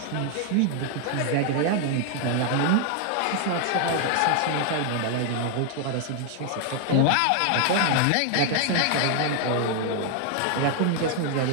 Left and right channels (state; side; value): different; both; correlation 0.00